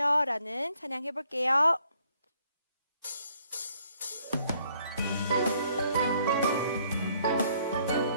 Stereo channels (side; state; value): both; inverted; correlation -0.66